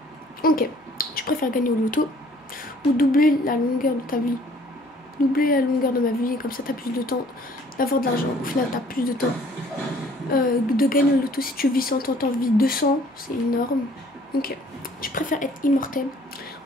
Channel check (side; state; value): both; normal; correlation 0.57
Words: Ok, tu préfères gagner au loto ou doubler la longueur de ta vie? doubler la longueur de ma vie, et comme ça t'as plus de temps d'avoir de l'argent. Au final t'as plus de temps de gagner le loto. Si tu vis 100 ans, t'en vis 200, c'est énorme. Ok, tu préfères être immortel?